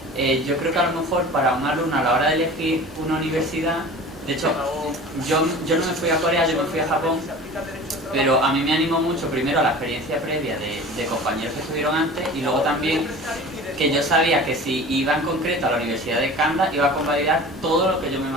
Yo creo que a lo mejor para un alumno a la hora de elegir una universidad, de hecho, yo no me fui a Corea, yo me fui a Japón, pero a mí me animó mucho primero la experiencia previa de compañeros que estuvieron antes, y luego también que yo sabía que si iba en concreto a la Universidad de Kanda iba a convalidar todo lo que yo me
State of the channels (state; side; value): normal; both; correlation 0.39